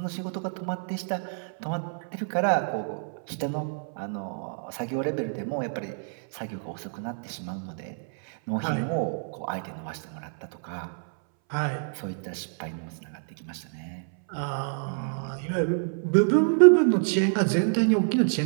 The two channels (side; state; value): left; silent; 60 dB below the other